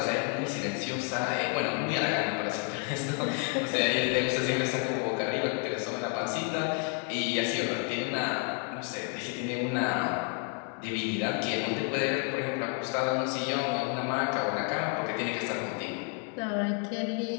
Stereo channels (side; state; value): right; quieter; 35.8 dB